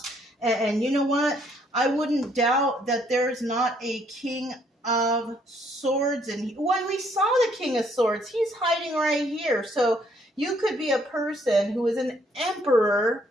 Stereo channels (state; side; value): normal; both; correlation 0.67